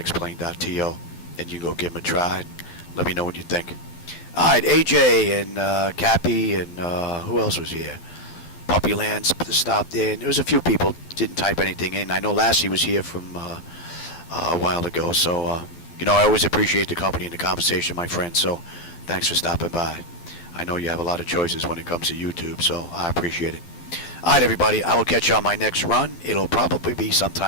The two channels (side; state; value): right; late; 12 ms